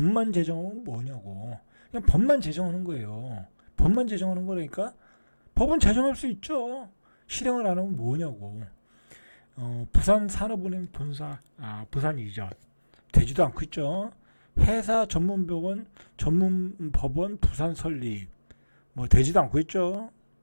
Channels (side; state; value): both; inverted; correlation -1.00